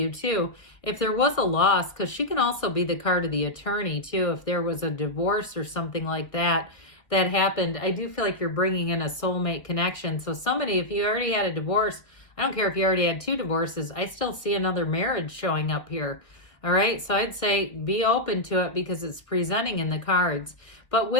too, if there was a loss, because she can also be the card of the attorney too, if there was a divorce or something like that happened, I do feel like you're bringing in a soulmate connection. So somebody, if you already had a divorce, I don't care if you already had 2 divorces, I still see another marriage showing up here. All right, so I'd say be open to it because it's presenting in the cards. But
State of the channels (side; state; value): right; late; 1.4 ms